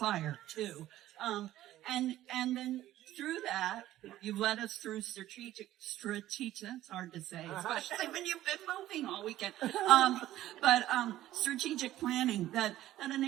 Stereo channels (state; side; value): quieter; left; 14.1 dB